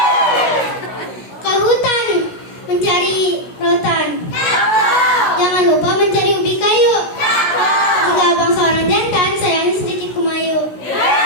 Ke hutan mencari rotan. Jangan lupa mencari ubi kayu. Jika abang seorang jantan, sayangnya sedikit kumayu.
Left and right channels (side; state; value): right; late; 16 ms